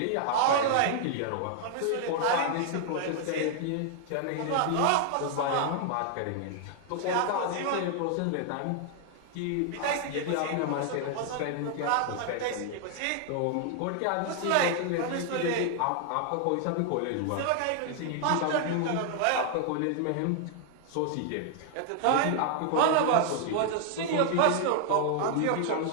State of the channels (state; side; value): different; both; correlation 0.00